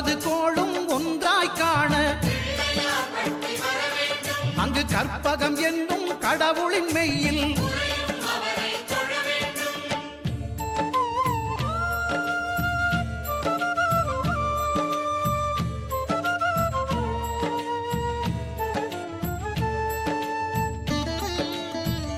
கோளும் ஒன்றாய் காண அங்கு கற்பகம் என்னும் கடவுளின் மெய்யில்.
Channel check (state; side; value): identical; both; correlation 1.00